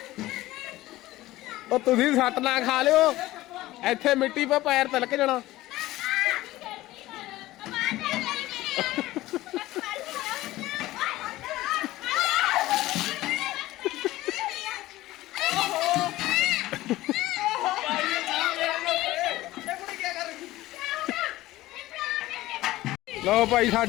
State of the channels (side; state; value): right; quieter; 17.0 dB